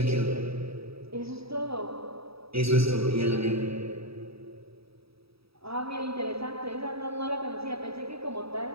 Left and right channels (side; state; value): left; late; 0.77 ms